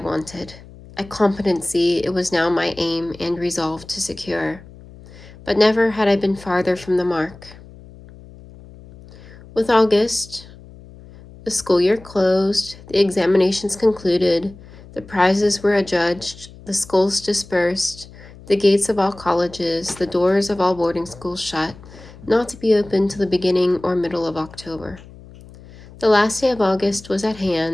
A competency it was now my aim and resolve to secure. But never had I been farther from the mark. With August, the school year closed, the examinations concluded, the prizes were adjudged, the schools dispersed, the gates of all colleges, the doors of all boarding schools shut, not to be opened till the beginning or middle of October. The last day of August was at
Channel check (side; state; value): left; noise; hum, 20 dB below the sound